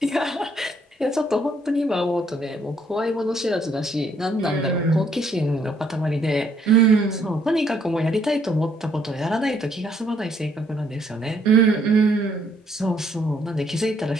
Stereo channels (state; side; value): normal; both; correlation 0.68